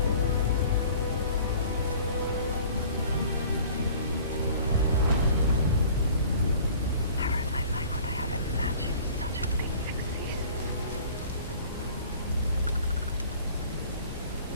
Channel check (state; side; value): inverted; both; correlation -0.48